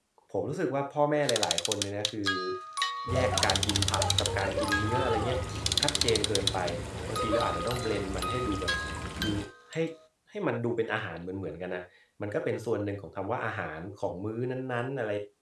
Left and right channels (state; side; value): identical; both; correlation 1.00